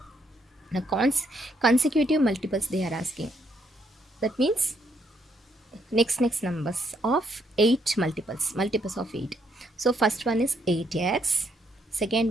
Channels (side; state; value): both; normal; correlation 0.74